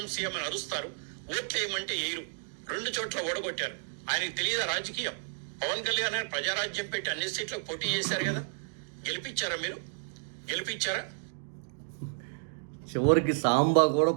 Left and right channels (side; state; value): left; silent; digital silence